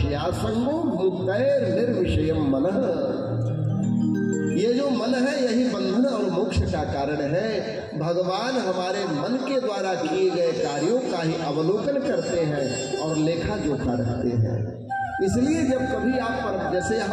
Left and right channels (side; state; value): both; identical; correlation 1.00